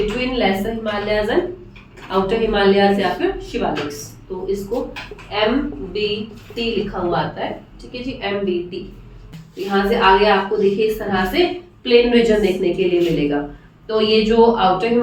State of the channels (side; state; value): both; identical; correlation 1.00